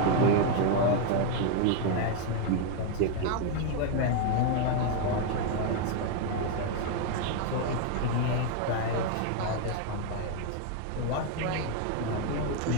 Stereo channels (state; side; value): different; both; correlation 0.01